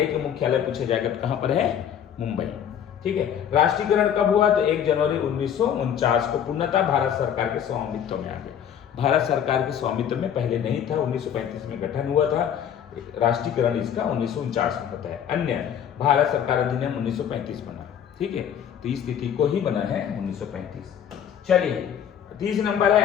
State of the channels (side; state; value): right; quieter; 9.0 dB